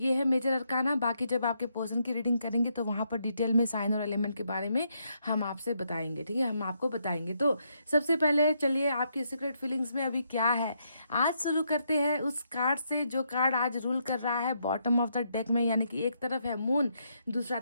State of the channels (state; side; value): inverted; both; correlation -0.77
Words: है मेजर अरकाना। बाकी जब आपके पर्सन की रीडिंग करेंगे तो वहाँ पर डिटेल में साइन और एलिमेंट के बारे में हम आपसे बताएंगे, ठीक है, हम आपको बताएंगे। तो सबसे पहले चलिए आपकी सीक्रेट फीलिंग्स में अभी क्या है आज शुरू करते हैं उस कार्ड से जो कार्ड आज रूल कर रहा है बॉटम ऑफ द डेक में, यानी कि एक तरफ है मून, दूसरा